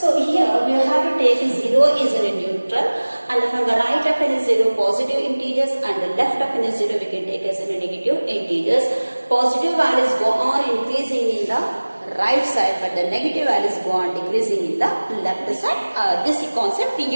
here we have to take 0 is a neutral, and from the right of it is 0 positive integers, and the left of it is 0 we can take as a negative integers. Positive values go on increasing in the right side, but the negative values go on decreasing in the left side. This concept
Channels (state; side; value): inverted; both; correlation -1.00